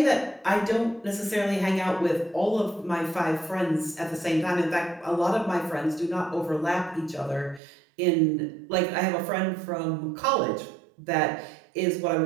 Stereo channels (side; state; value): left; drops out; at 7.6 s